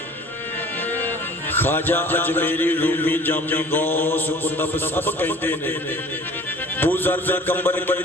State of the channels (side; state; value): both; normal; correlation 0.48